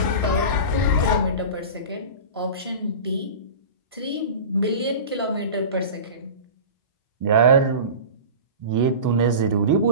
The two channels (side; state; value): both; inverted; correlation -0.33